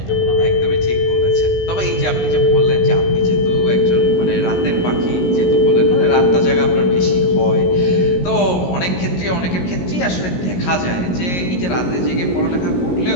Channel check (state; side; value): late; right; 17 ms